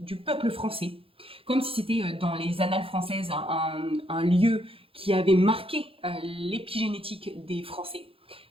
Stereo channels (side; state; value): left; late; 0.27 ms